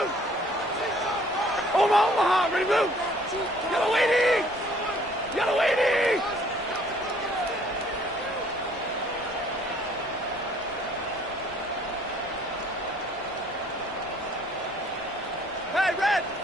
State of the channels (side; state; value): both; normal; correlation 0.59